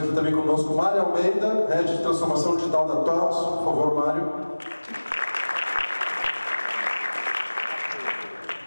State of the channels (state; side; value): inverted; both; correlation -1.00